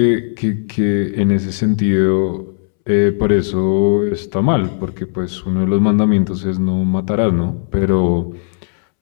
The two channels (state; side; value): silent; right; 69 dB below the other